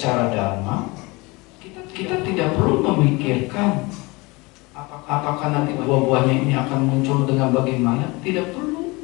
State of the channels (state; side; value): quieter; right; 24.6 dB